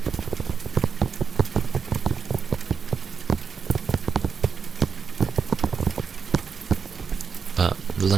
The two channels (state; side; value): quieter; left; 6.0 dB